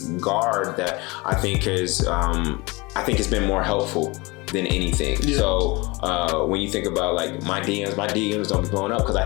that I think is it's been more helpful than anything. So when you think about like my DMs don't be blowing up because I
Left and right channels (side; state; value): right; quieter; 25.0 dB